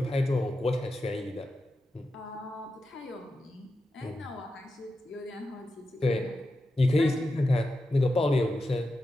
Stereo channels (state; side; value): normal; both; correlation 0.90